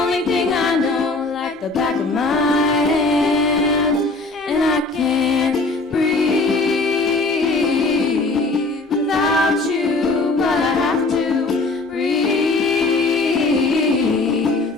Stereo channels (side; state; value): right; quieter; 3.3 dB